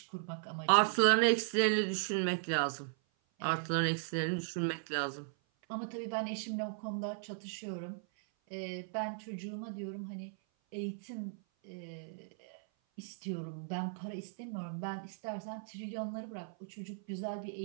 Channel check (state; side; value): silent; left; 53 dB below the other